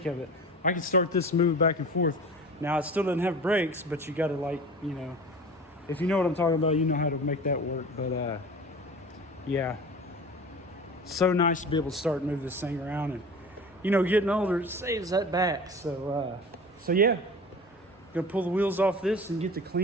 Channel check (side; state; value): both; normal; correlation 0.37